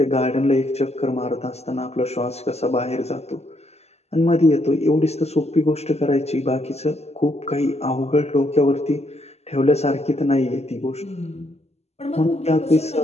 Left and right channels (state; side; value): late; right; 0.30 ms